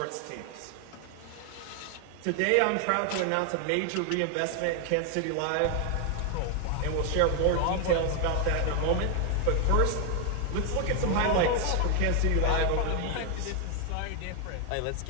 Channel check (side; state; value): both; different; correlation 0.00